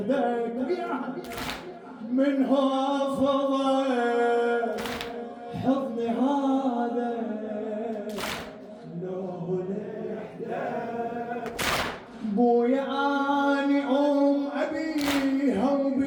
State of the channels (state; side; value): identical; both; correlation 1.00